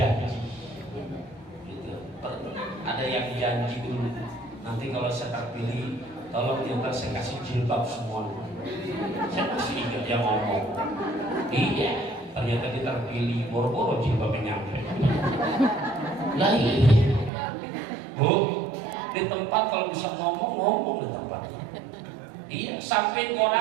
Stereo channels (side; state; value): left; drops out; at 17.3 s